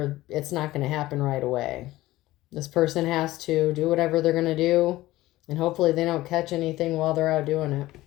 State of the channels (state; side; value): quieter; right; 17.0 dB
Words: it's not going to happen right away. This person has to do whatever they're going to do, and hopefully they don't catch anything while they're out doing it.